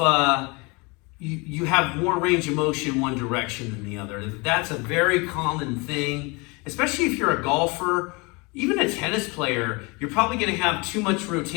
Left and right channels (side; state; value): right; quieter; 27.8 dB